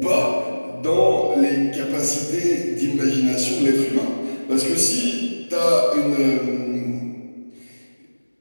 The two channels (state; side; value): inverted; both; correlation -1.00